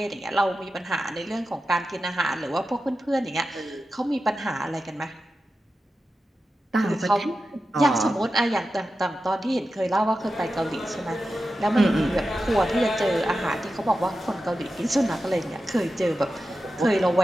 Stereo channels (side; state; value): both; normal; correlation 0.92